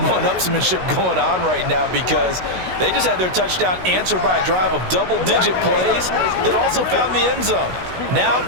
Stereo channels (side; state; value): left; late; 16 ms